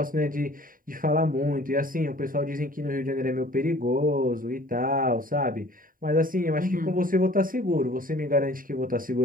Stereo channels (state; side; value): late; left; 0.41 ms